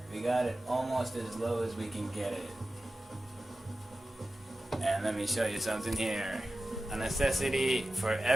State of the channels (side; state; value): both; normal; correlation 0.95